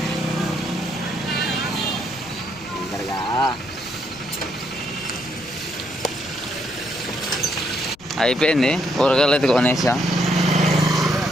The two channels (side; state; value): left; noise; rumble, 24 dB below the sound